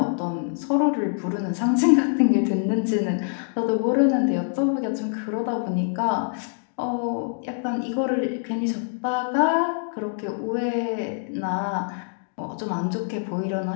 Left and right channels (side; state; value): right; silent; digital silence